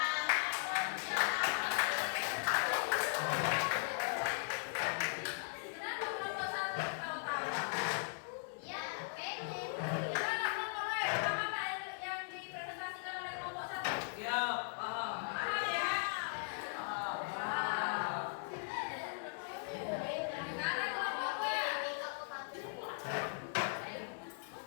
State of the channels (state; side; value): silent; right; digital silence